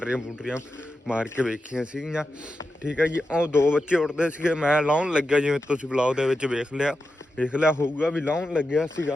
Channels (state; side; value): normal; both; correlation 0.90